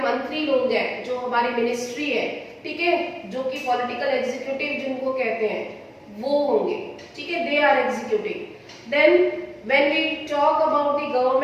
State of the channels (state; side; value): identical; both; correlation 1.00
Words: मंत्री लोग हैं, जो हमारी मिनिस्ट्री है, ठीक है, जो कि पॉलिटिकल एग्जीक्यूटिव जिनको कहते हैं, वो होंगे. ठीक है, they are executive. Then when we talk about the